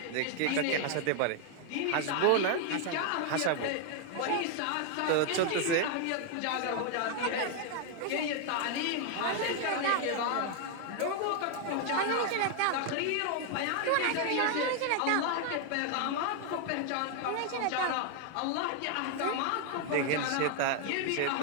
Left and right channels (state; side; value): different; both; correlation 0.00